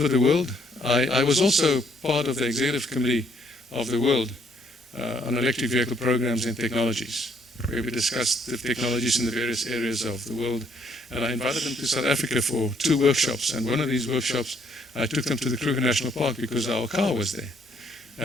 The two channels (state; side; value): normal; both; correlation 0.68